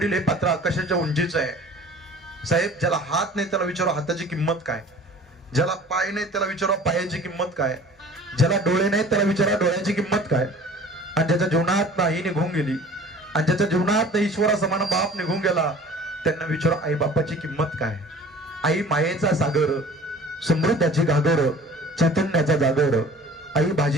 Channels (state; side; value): normal; both; correlation 0.46